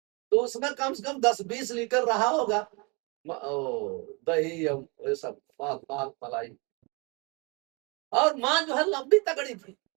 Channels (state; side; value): quieter; left; 30.1 dB